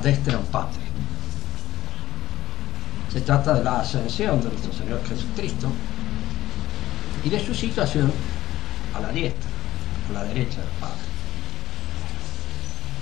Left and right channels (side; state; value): right; quieter; 15.0 dB